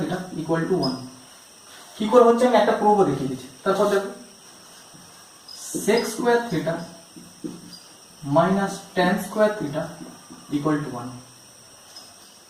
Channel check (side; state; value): both; identical; correlation 1.00